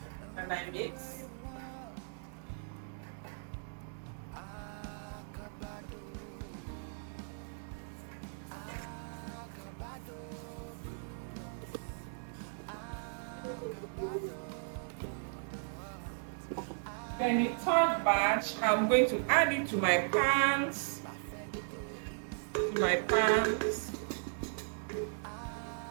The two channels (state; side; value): silent; left; 53 dB below the other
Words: and I mix. Then the third batch, I'm going to add it to my pans.